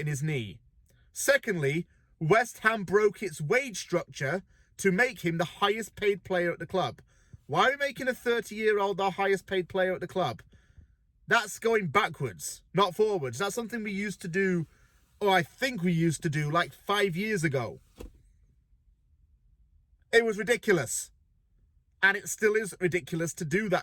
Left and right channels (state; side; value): identical; both; correlation 1.00